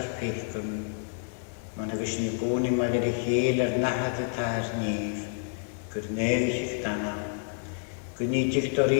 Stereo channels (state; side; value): silent; right; 59 dB below the other